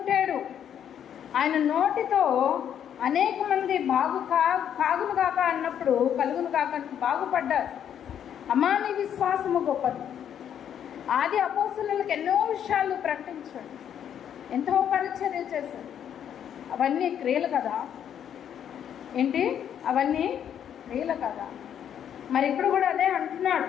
ఆయన నోటితో అనేక మంది కాగును కాక అన్నప్పుడు కలుగును కాక బాగుపడ్డారు. అమ్మా నీ విశ్వాసము గొప్పది. ఆది అపోస్తలులకు ఎన్నో విషయాలు ప్రకటించాడు, ఎంతో పరిచర్య చేశాడు. అవన్నీ క్రియలు కదా ఏంటి? అవన్నీ క్రియలు కదా. మరి ఇప్పుడు కూడా అదే అంటున్నాడు,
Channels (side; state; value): right; quieter; 9.3 dB